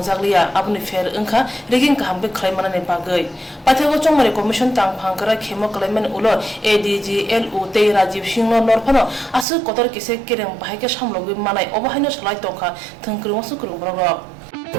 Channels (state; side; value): drops out; left; at 9.5 s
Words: आबनि फेर अंखा रेगिं काहामबे खलायमानानि बागै पाथेगो चोंगमारि कमिशन तांफांकरा खेमो खलायमान उलो ADGLU ते राजीव सिंह नरफानो आसु कतर किसे केरें बाहायके सामलगै मानाय अबाहायनो सलाय तंखा थंख्रुमसु खुरुमब्रग